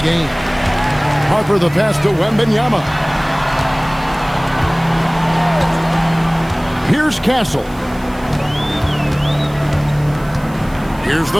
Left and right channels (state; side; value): noise; right; hiss, 24 dB below the sound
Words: Harper the pass to Wembanyama. Here's Castle. Here's